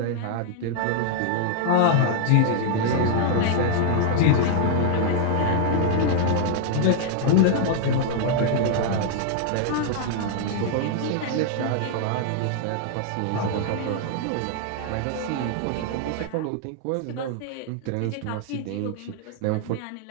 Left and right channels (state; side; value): different; both; correlation 0.00